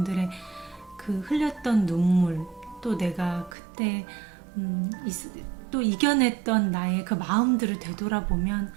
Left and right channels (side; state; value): left; drops out; at 3.6 s